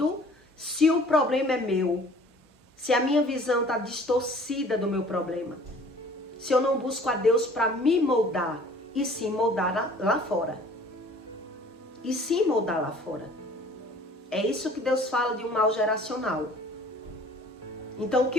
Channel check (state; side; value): normal; both; correlation 0.51